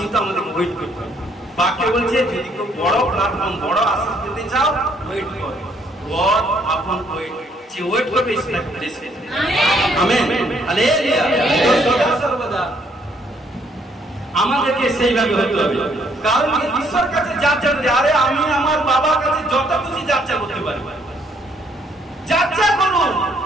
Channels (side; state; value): both; normal; correlation 0.67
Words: আমাদের ওয়েট করতে হবে। বাক্য বলছে যদি কেউ বড় প্ল্যাটফর্ম, বড় আশীষ পেতে চাও, ওয়েট করো। গড আপন ওয়েট করবে ঈশ্বরকে প্রেস করবে। আমেন। হালেলুয়া। সর্বদা আমাদেরকে সেইভাবে হতে হবে। কারণ ঈশ্বর কাছে যাচ্ছা করি, আরে আমি আমার বাবার কাছে যত কিছু যাচ্ছা করতে পারি, যাচ্ছা করুন,